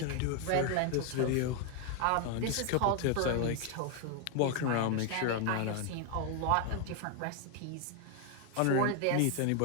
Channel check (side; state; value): both; different; correlation 0.01